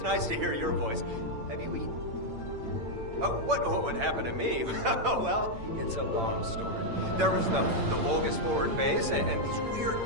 nice to hear your voice. Have you eaten? Oh, what would happen to me? Well, it's a long story. There was the Vulgus forward base and these weird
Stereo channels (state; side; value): late; left; 8.9 ms